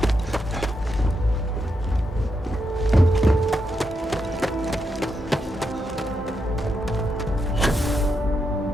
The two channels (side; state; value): both; normal; correlation 0.83